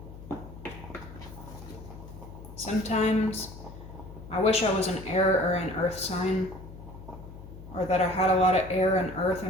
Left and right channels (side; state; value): left; noise; hum, 15 dB below the sound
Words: Sometimes I wish I was an air or an earth sign, or that I had a lot of air and earth